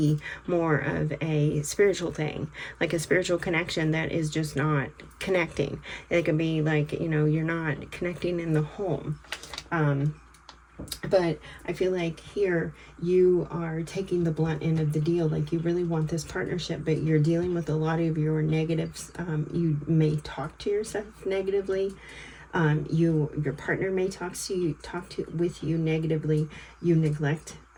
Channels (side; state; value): both; identical; correlation 1.00